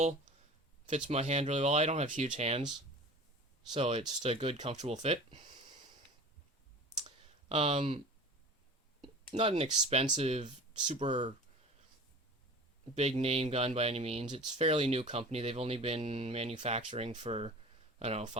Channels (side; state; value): both; normal; correlation 0.38